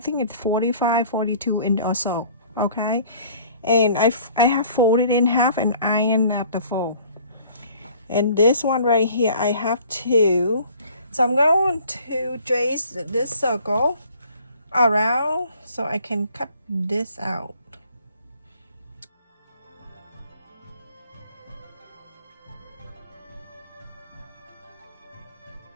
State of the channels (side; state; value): both; inverted; correlation -0.53